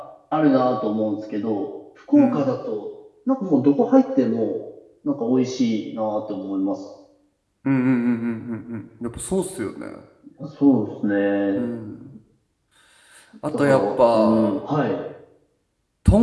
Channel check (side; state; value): both; identical; correlation 1.00